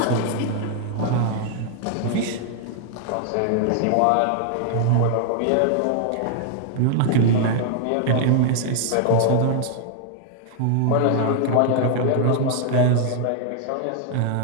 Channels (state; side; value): different; both; correlation -0.01